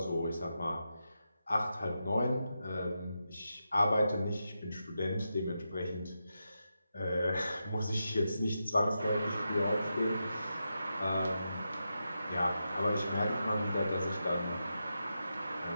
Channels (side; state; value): both; inverted; correlation -0.88